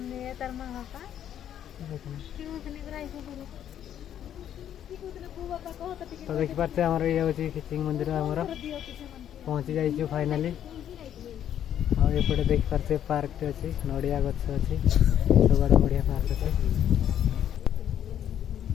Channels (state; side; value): quieter; right; 10.2 dB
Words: तो देख पारे आमर ये हूँ खिचिंग मंदिर आमर पहुँची जाइए फाइनाली आउपटे देख पारे पार्क टे अच्छी नड़िया गछ अच्छी सब आड़े बढ़िया पार्क अच्छे